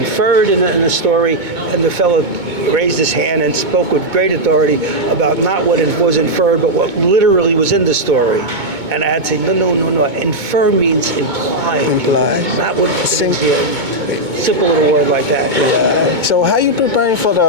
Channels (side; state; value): left; late; 2.2 ms